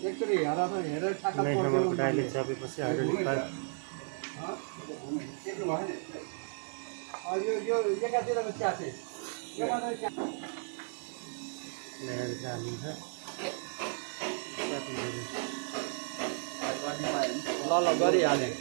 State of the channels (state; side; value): silent; left; digital silence